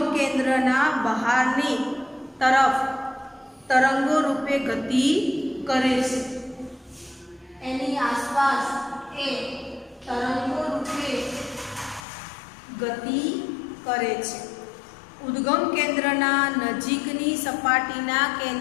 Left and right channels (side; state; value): right; drops out; at 12.0 s